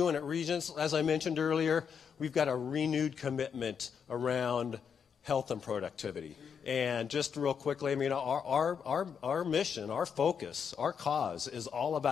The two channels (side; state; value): right; quieter; 7.0 dB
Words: at Regents, as I mentioned earlier, we've got a renewed commitment around health and productivity. And just real quickly, I mean, our mission, our focus, our cause is all